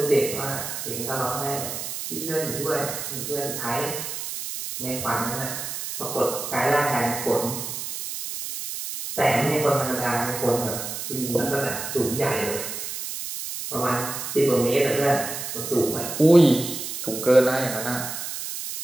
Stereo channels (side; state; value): right; noise; hiss, 6 dB below the sound